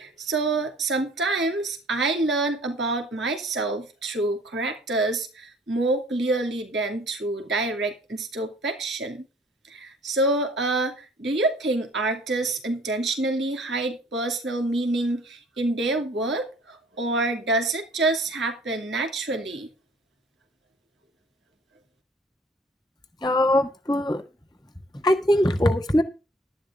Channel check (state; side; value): normal; both; correlation 0.54